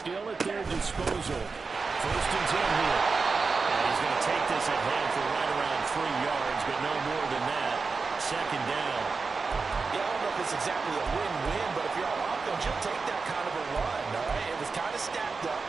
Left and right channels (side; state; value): left; quieter; 4.5 dB